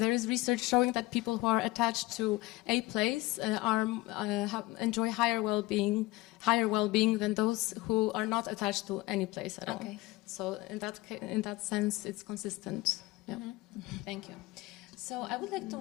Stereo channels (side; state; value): right; quieter; 19.9 dB